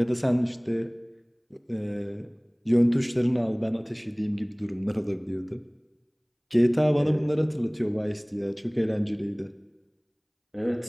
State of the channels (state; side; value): identical; both; correlation 1.00